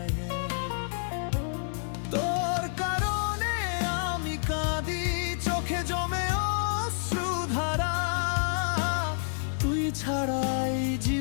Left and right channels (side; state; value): right; silent; 59 dB below the other